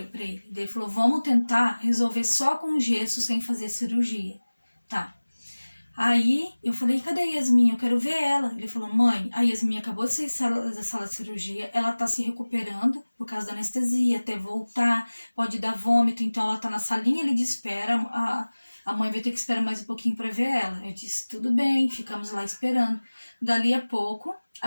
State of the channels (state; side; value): inverted; both; correlation -1.00